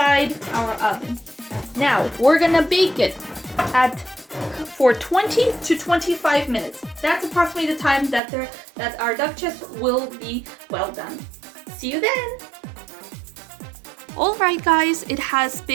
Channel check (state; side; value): drops out; left; at 8.2 s